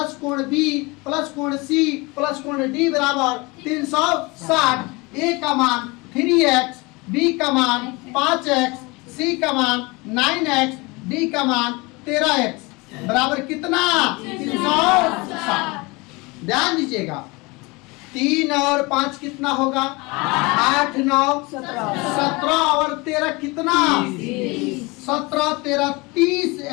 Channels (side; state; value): right; quieter; 25.4 dB